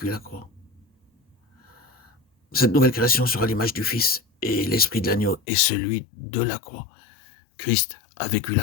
la croix. Cette nouvelle création sera l'image du Fils et l'esprit de l'agneau est celui de la croix. Christ a vécu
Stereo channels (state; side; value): drops out; right; at 5.4 s